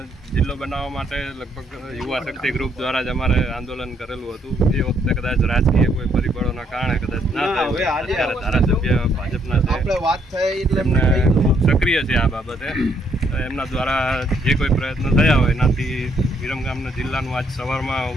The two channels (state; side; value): normal; both; correlation 0.71